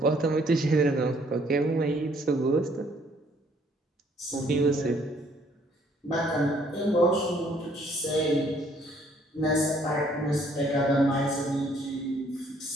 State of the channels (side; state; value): both; normal; correlation 0.63